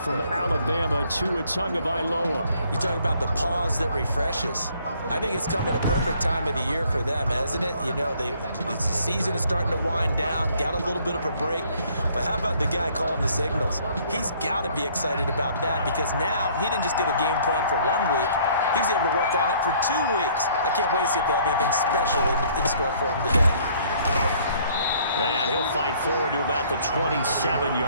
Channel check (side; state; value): both; inverted; correlation -0.60